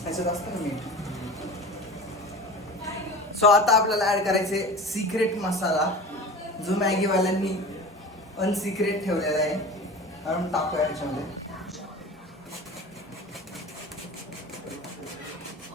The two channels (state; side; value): normal; both; correlation 0.35